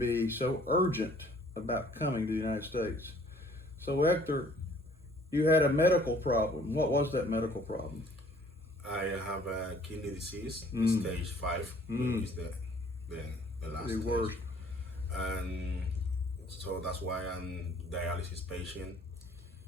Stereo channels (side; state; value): both; normal; correlation 0.57